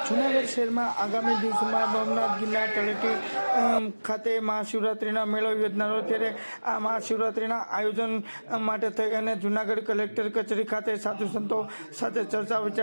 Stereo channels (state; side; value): inverted; both; correlation -1.00